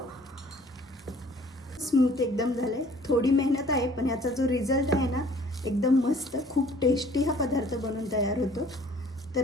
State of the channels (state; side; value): normal; both; correlation 0.54